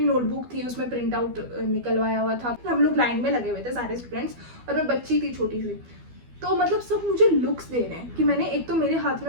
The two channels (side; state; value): left; late; 12 ms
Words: नोटबुक थी, उसमें प्रिंट आउट निकलवाया हुआ था। हम लोग लाइन में लगे हुए थे सारे स्टूडेंट्स, और मैं बच्ची थी छोटी सी, तो मतलब सब मुझे लुक्स दे रहे हैं कि मैंने, एक तो मेरे हाथ